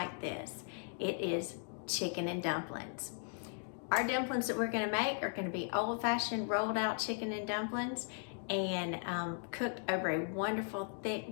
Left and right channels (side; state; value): right; silent; 53 dB below the other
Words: this. It is chicken and dumplings. Our dumplings that we're going to make are going to be old-fashioned rolled out chicken and dumplings, and cooked over a wonderful thick